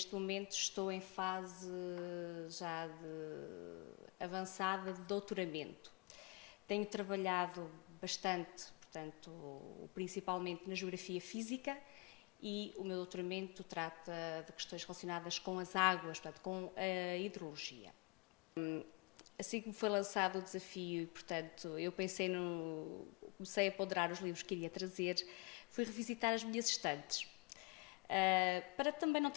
momento estou em fase já avançada de doutoramento. Tenho trabalhado bastante, portanto, principalmente na geografia física, e o meu doutoramento trata de questões relacionadas com as águas, portanto, com a hidrologia. Assim que me foi lançado o desafio, portanto, eu comecei a ponderar os livros que iria trazer, fui revisitar as minhas estantes. Para também não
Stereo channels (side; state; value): right; quieter; 28.8 dB